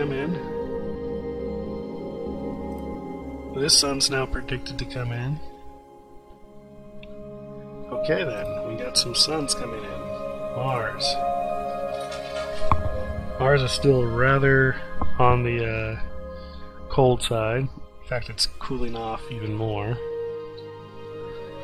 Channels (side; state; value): both; identical; correlation 1.00